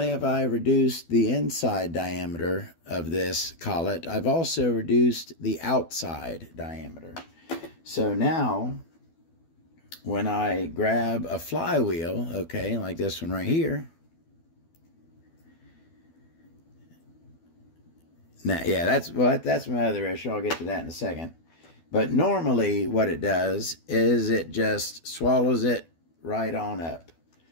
have I reduced the inside diameter of this collet, I've also reduced the outside diameter. So now when I grab a flywheel, okay, like this one right here. Now, yeah, that's my other issue. I'll get to that in a second. But normally what it does is it just swallows it right on up.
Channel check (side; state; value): right; late; 12 ms